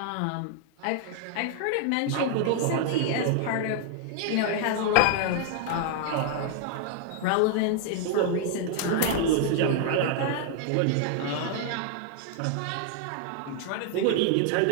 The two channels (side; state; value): both; different; correlation 0.00